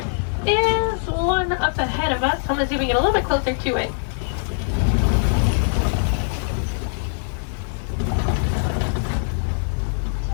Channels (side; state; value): right; silent; digital silence